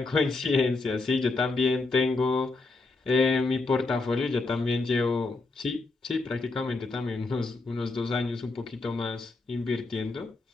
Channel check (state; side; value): quieter; right; 3.5 dB